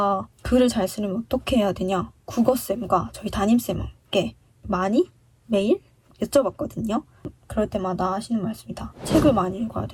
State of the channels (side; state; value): both; identical; correlation 1.00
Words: 글을 잘 쓰려면 어떻게 해야 되냐 국어쌤과 저희 담임쌤께 많이 매일 여쭤봤거든요. 그럴 때마다 하시는 말씀이다. 책을 많이 읽어야